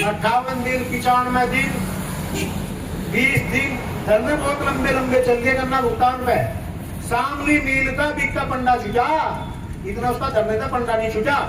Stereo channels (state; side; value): identical; both; correlation 1.00